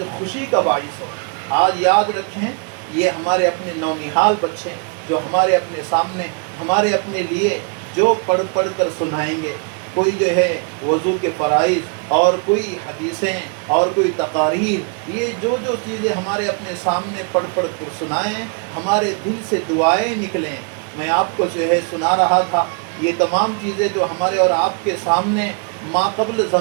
خوشی کا باعث ہو۔ آج یاد رکھیں یہ ہمارے اپنے نونہال بچے جو ہمارے اپنے سامنے ہمارے اپنے لیے جو پڑھ کر سنائیں گے، کوئی جو ہے وضو کے فرائض اور کوئی حدیثیں اور کوئی تقاریر، یہ جو چیزیں ہمارے اپنے سامنے پڑھ کر سنائیں، ہمارے دل سے دعائیں نکلیں۔ میں آپ کو جو ہے سنا رہا تھا یہ تمام چیزیں جو ہمارے اور آپ کے سامنے ماقبل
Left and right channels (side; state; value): left; quieter; 37.5 dB